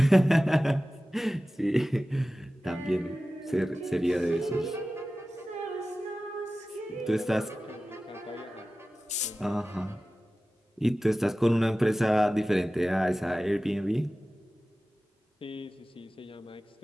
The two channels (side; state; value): both; normal; correlation 0.96